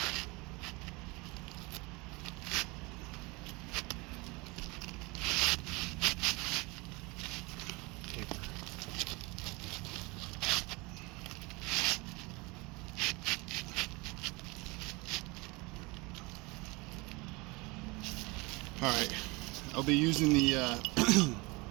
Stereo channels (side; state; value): left; quieter; 25.4 dB